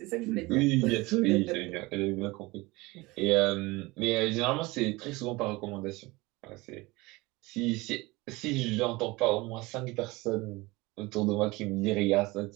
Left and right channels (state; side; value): quieter; left; 22.4 dB